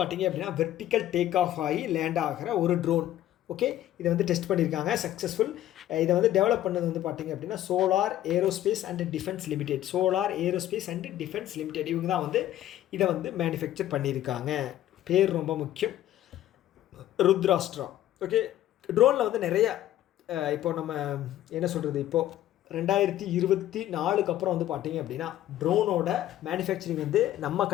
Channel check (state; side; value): quieter; right; 13.1 dB